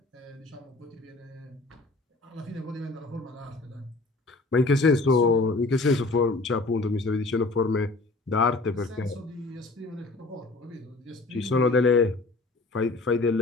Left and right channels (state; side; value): quieter; right; 3.3 dB